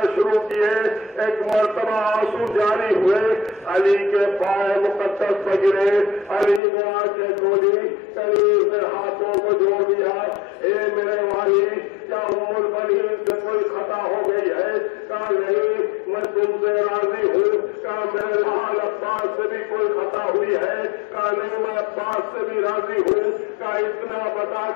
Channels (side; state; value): right; drops out; at 6.6 s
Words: شروع کیے. ایک مرتبہ آنسو جاری ہوئے, علی کے پائے مقدس پر گرے. علی نے آنکھیں کھولی, قریب نے ہاتھوں کو جوڑ دیا. اے میرے بھائی, کیا ام البنین سے کوئی خطا ہو گئی ہے؟ کہا نہیں, میں تم سے راضی ہوں. کہا میرے لال عباس سے بھی کوئی خطا ہوئی ہے؟ کہا نہیں, میں عباس سے بھی راضی ہوں. کہا اتنا بتا